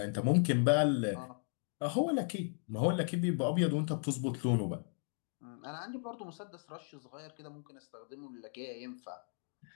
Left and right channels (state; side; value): silent; right; 54 dB below the other